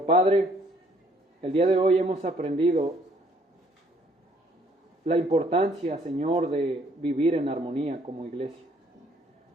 Padre, el día de hoy hemos aprendido la importancia, Señor, de vivir en armonía como iglesia.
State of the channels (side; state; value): both; normal; correlation 0.63